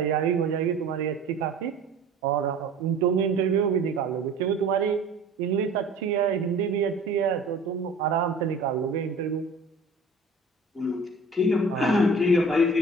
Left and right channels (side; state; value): left; quieter; 3.1 dB